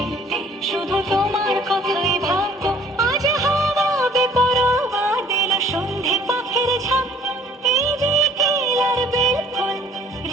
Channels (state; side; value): normal; both; correlation 0.56